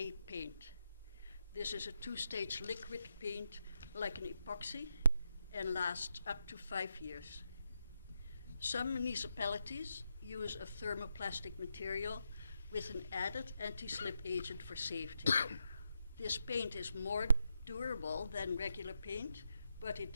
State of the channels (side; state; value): both; inverted; correlation -0.84